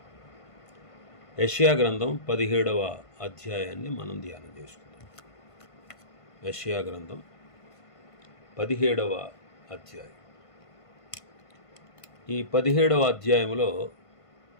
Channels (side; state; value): right; late; 1.5 ms